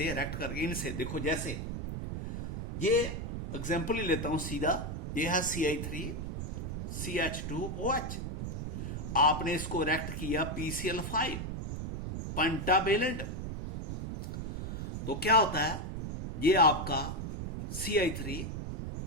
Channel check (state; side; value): noise; right; rumble, 4 dB below the sound